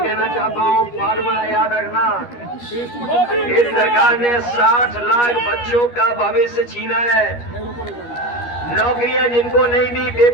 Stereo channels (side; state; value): right; late; 13 ms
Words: चाहता हूँ, फार्मूला याद रखना, इस सरकार ने 60 लाख बच्चों का भविष्य छीना है। नौकरियां जिनको नहीं दी